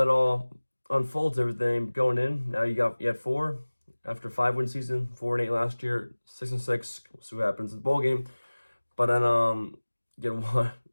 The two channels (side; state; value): both; inverted; correlation -1.00